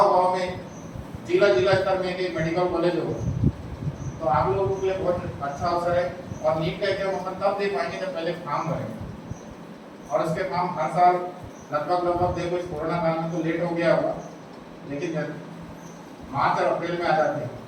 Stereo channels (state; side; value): identical; both; correlation 1.00